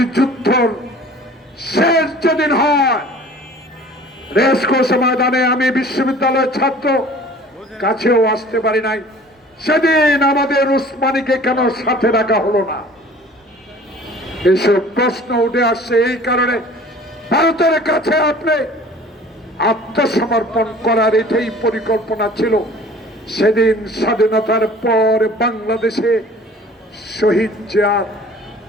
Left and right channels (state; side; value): normal; both; correlation 0.47